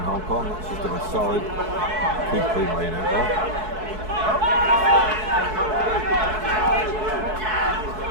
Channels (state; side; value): late; left; 4.6 ms